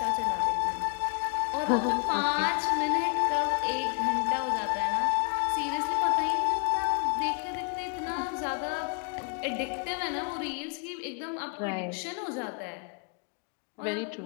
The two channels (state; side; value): quieter; right; 36.3 dB